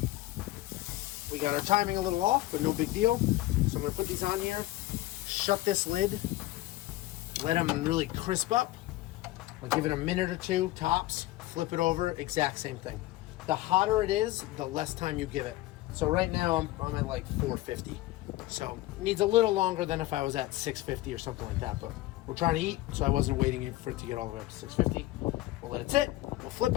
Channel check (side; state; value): right; quieter; 16.9 dB